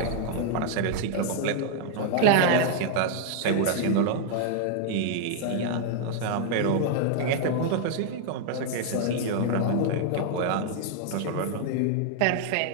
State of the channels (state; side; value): different; both; correlation 0.00